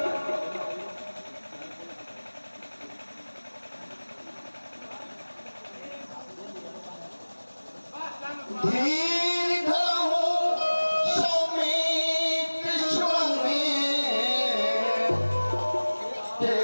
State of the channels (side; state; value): both; inverted; correlation -1.00